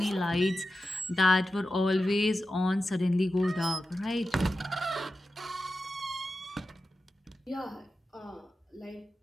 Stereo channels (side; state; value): both; normal; correlation 0.92